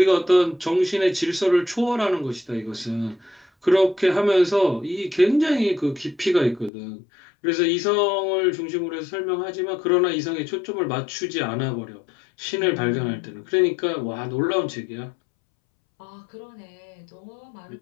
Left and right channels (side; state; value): right; drops out; at 6.7 s